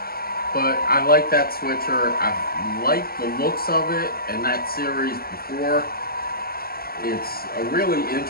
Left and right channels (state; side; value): late; right; 0.44 ms